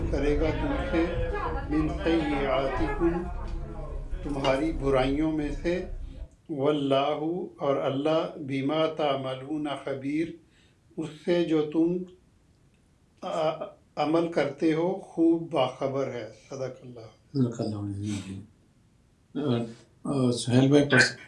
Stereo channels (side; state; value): both; identical; correlation 1.00